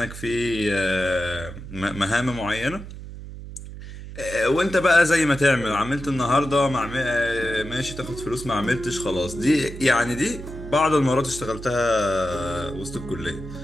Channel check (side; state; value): right; noise; hum, 12 dB below the sound